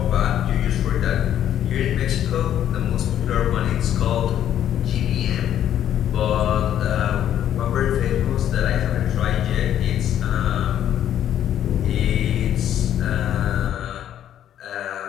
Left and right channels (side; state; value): right; quieter; 10.7 dB